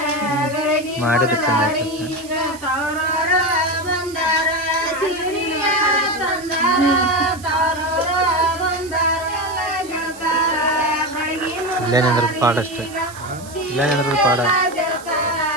ಮಾಡಿದ್ರೆ ಚಂದ ಆಗ್ತದೆ. ಇಲ್ಲೇನಂದ್ರೆ ಪಾಡ ಅಷ್ಟೇ, ಇಲ್ಲೇನಂದ್ರೆ ಪಾಡ.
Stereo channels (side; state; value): right; noise; hiss, 18 dB below the sound